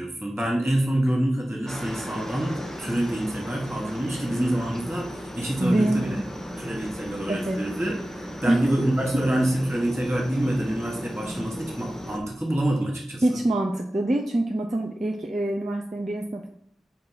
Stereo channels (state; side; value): normal; both; correlation 0.95